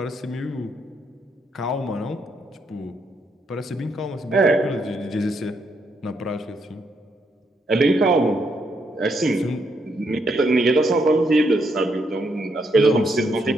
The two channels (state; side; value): normal; both; correlation 0.76